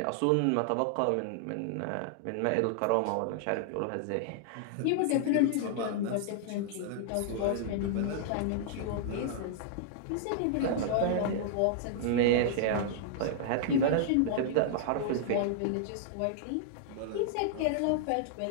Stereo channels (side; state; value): both; different; correlation -0.01